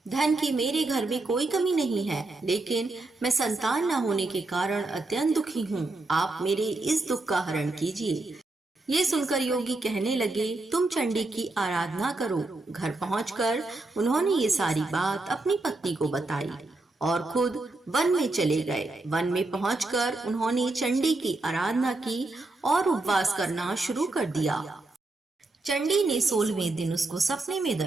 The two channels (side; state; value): left; quieter; 3.1 dB